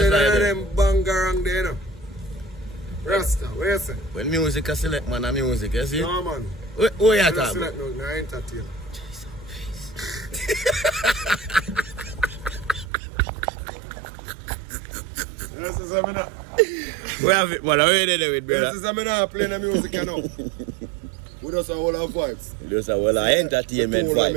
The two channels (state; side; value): drops out; left; at 12.9 s